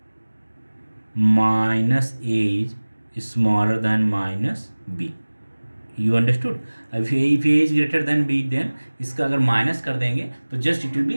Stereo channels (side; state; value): both; inverted; correlation -1.00